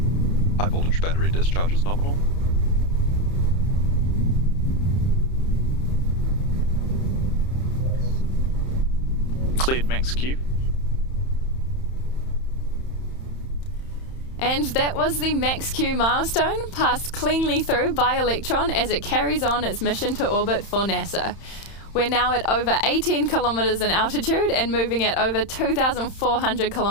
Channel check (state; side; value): late; right; 31 ms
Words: High voltage battery discharge is nominal. Cleared max Q. And that was the max Q milestone, passed cleanly through by Electron as it carries on its mission to orbit for NASA. We're now at over 18 kilometers in altitude and moving at over 2,400